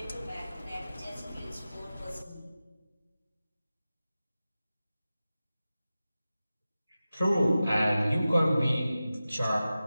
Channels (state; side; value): inverted; both; correlation -0.95